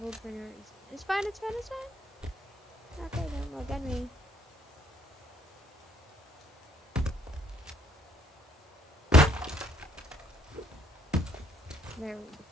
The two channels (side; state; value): both; normal; correlation 0.66